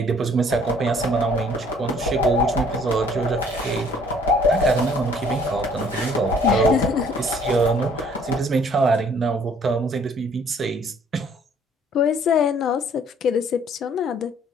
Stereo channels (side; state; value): both; normal; correlation 0.59